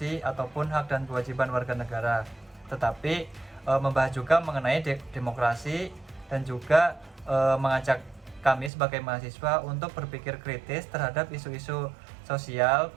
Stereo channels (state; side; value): drops out; left; at 8.7 s